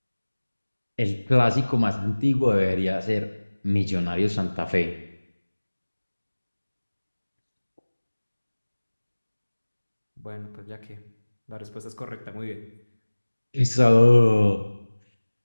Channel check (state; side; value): inverted; both; correlation -1.00